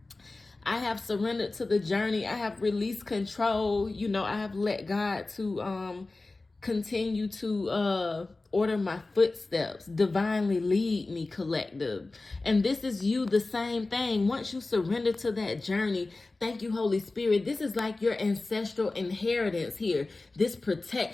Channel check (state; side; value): quieter; right; 3.3 dB